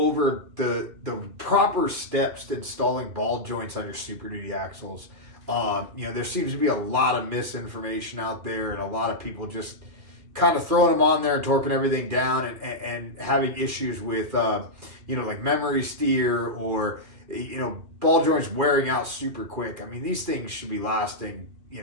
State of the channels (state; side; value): late; left; 2.4 ms